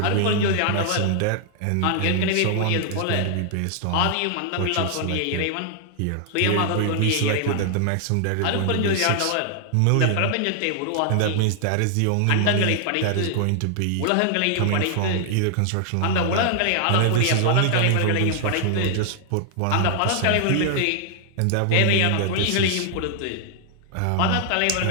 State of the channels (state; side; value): different; both; correlation -0.01